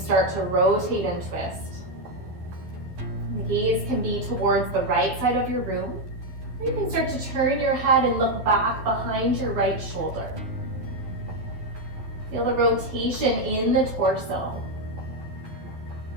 to rotate and twist. The gaze can be towards the right side of your room, or you can start to turn your head and look back behind your right shoulder. Feel the rotation in the torso.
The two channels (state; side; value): late; left; 12 ms